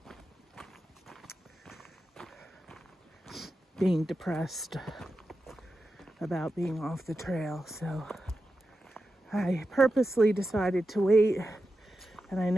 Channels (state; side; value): normal; both; correlation 0.91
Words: being depressed about being off the trail. So I purposely decided to wait, and I